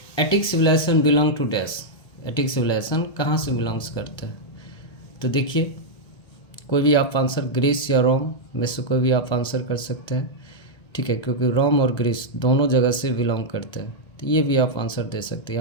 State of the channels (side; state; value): right; late; 1.2 ms